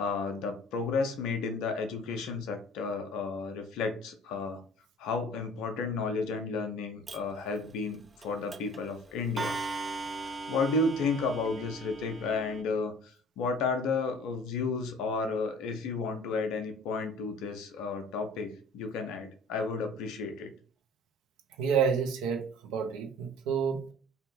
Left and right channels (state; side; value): normal; both; correlation 0.47